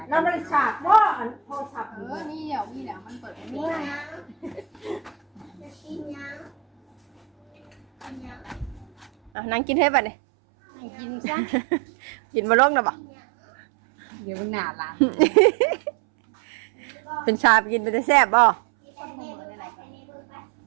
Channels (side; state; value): left; drops out; at 9.3 s